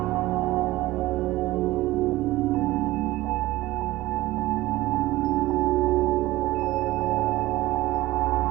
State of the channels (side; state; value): left; quieter; 17.7 dB